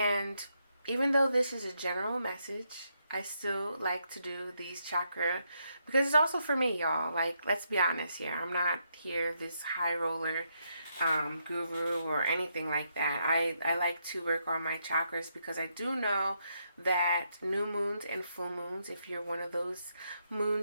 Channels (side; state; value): both; inverted; correlation -0.78